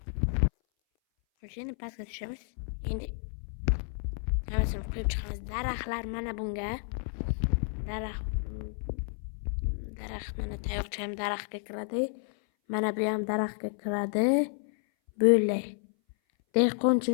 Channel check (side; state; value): right; silent; 57 dB below the other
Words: Xo'sh, endi pastga tushamiz. Endi hammasini qo'yib chiqamiz. Daraxtlar mana bunga. Daraxt mana tayoqcha ham daraxtga kiradi. Mana bu ham daraxtga kiradi. Böyle.